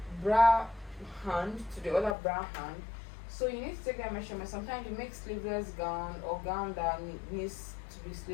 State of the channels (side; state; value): right; drops out; at 2.1 s